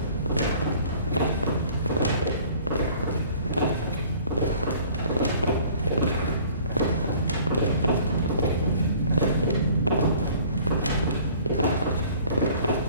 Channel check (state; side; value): inverted; both; correlation -0.51